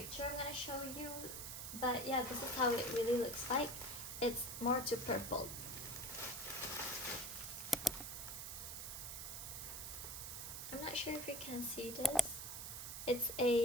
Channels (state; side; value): noise; right; hiss, 6 dB below the sound